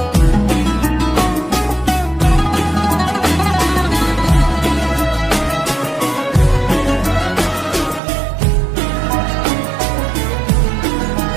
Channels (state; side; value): drops out; left; at 8.0 s